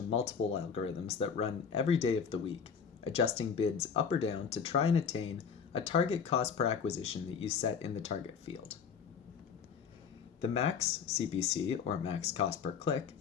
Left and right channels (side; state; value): right; quieter; 6.6 dB